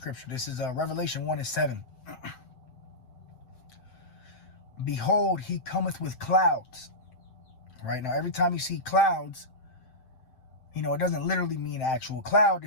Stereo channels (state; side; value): late; right; 7.8 ms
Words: This is Revelation 1:7. Behold, he cometh with clouds. Right now, every time you see clouds, it doesn't literally mean an actual cloud.